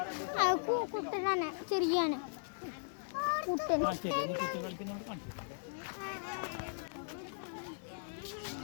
കുട്ടനാണ്, ശരിയാണ് കുട്ടൻ.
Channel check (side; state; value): right; silent; digital silence